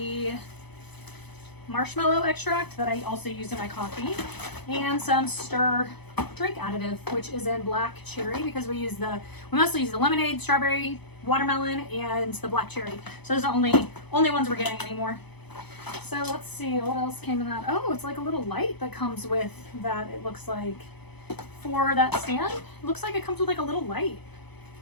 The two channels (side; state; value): right; late; 0.99 ms